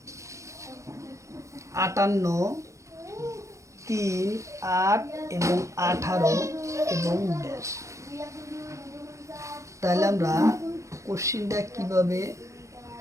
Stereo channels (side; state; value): left; late; 0.15 ms